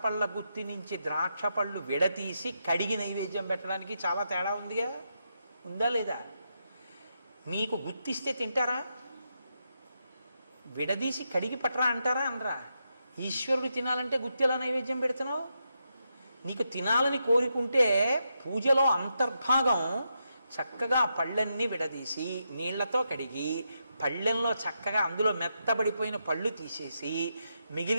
పళ్ళ గుత్తి నుంచి ద్రాక్ష పళ్ళు విడతీసి కడిగి నైవేద్యం పెట్టడానికి చాలా తేడా ఉందిగా. ఉందా లేదా? మీకు గుత్తిస్తే తింటారా? విడదీసి కడిగి పట్టరా అంటారా? అనరా? ఈశ్వరుడు తినాలంటే గుత్తిలా నైవేద్యం పెడుతున్నావు. నీకు తినాలని కోరుకుంటే పూజలో అంతర్భాగం చక్కగా పళ్ళన్నీ విడదీసి నీళ్లతో కడిగి పళ్ళెంలో చక్కగా అందులో మెత్తబడిపోయిన పళ్ళు తీసేసి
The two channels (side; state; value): both; inverted; correlation -0.84